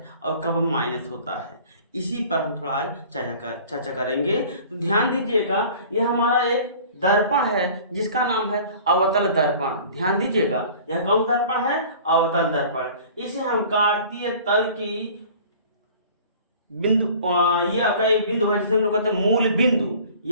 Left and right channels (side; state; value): both; inverted; correlation -0.46